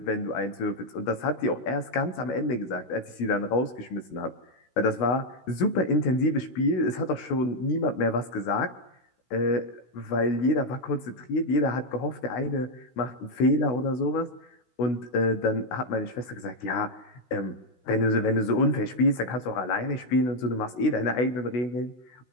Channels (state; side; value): late; right; 16 ms